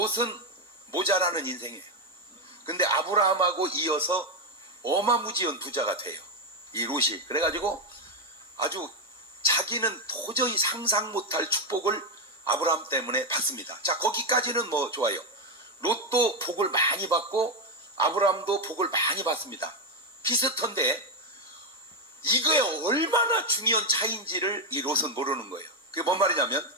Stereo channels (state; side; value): normal; both; correlation 0.06